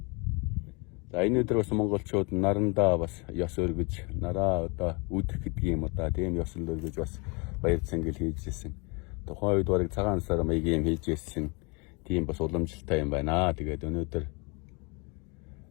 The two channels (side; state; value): right; quieter; 30.2 dB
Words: За энэ өдөр бас монголчууд нарандаа бас ёс өргөж, нараа одоо үдэх гэдэг юм одоо тийм ёсол өргөж бас баяр цангил хийжсэн. Тухайн үед барыг цагаан сар маягийн юм хийжсэн. Тийм бас уламжлалтай юм байна. Тэгээд өнөөдөр